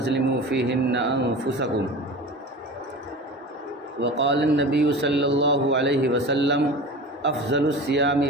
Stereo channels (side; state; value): both; normal; correlation 0.34